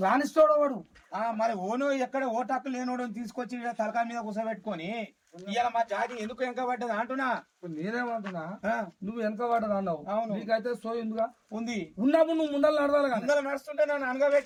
రాణిస్తాడు వాడు. మరి ఓను ఎక్కడ ఓటు హక్కు లేనోడు తీసుకొచ్చి తలకాయ మీద కూర్చోబెట్టుకొని ఇవాళ మా జాతి ఎందుకు వెనకబడ్డది అంటున్నా. నేనేమంటున్నా, నువ్వు వెనకబడ్డది అన్నావు. అవును, నీకైతే సో ఎందుగా ఉంది. ఉన్నప్పుడు నువ్వు ముందర నడవాలి. ముందర నడుస్తుంటే నన్ను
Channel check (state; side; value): identical; both; correlation 1.00